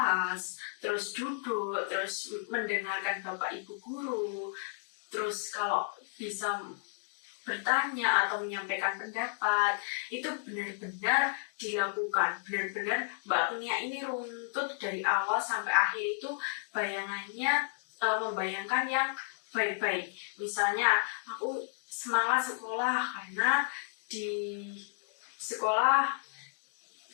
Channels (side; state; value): right; silent; digital silence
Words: terus duduk, terus mendengarkan Bapak Ibu guru, terus kalau bisa bertanya atau menyampaikan pendapat, itu benar-benar dilakukan. Benar-benar Mbak Agnia ini runtut dari awal sampai akhir itu bayangannya membayangkan yang baik-baik. Misalnya aku semangat sekolah karena di sekolah